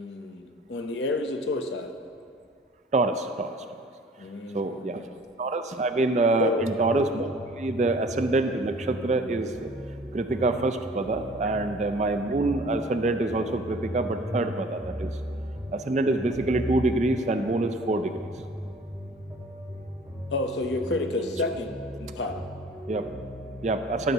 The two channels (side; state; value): both; normal; correlation 0.49